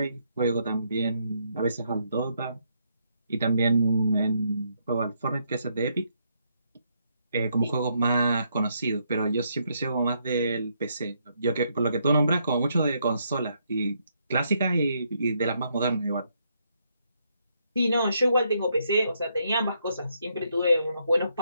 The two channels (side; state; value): both; inverted; correlation -0.76